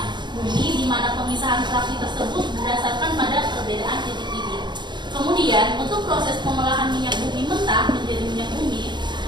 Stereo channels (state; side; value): late; left; 0.22 ms